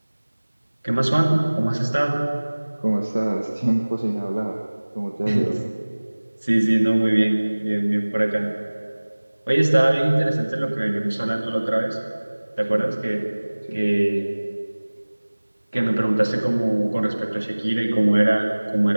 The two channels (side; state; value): both; inverted; correlation -1.00